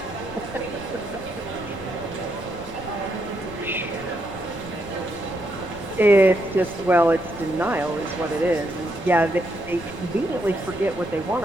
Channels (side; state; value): left; noise; rumble, 16 dB below the sound